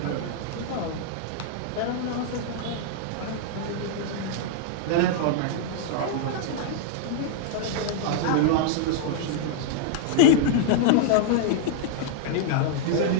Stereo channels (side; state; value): both; different; correlation -0.01